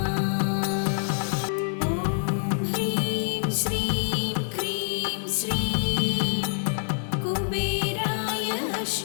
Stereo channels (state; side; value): silent; right; digital silence